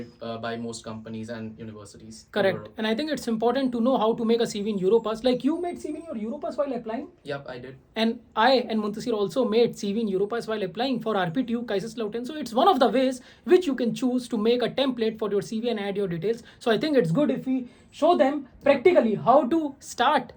by most companies and universities. in Correct. Europe. And I think it's important to know how to make a CV in Europass. Like you made CV in your Europass while applying. Yep, I did. And I and Muntasir also made CV in Europass while applying for RPTU Kaiserslautern. So it's one of the ways which you can choose to make a template for your CV and add your details. So I think it's good if we show them practically how to start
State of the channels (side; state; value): both; identical; correlation 1.00